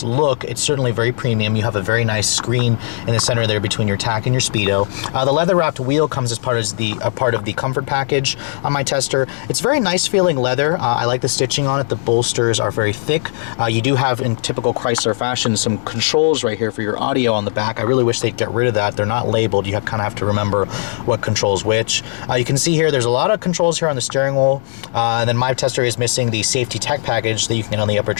look, it's certainly very premium. You have a very nice screen in the center there between your tack and your speedo. The leather wrapped wheel comes as part of the comfort package on my tester. It's very nice feeling leather. I like the stitching on it. The bolsters are very thick. You do have, in typical Chrysler fashion, some controls right here for your audio on the back. I really wish they'd get rid of that. They're not labeled. You kind of have to remember what controls which. You can see here there's a lot of controls here on the steering wheel, and then my tester is missing the safety tech package that you can get on the upper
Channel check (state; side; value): silent; right; digital silence